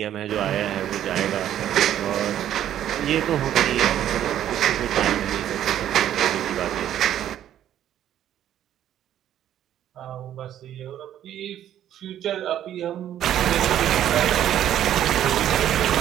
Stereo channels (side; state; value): left; quieter; 11.2 dB